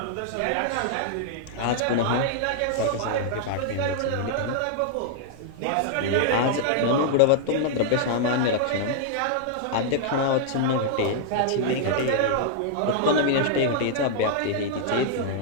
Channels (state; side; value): different; both; correlation -0.01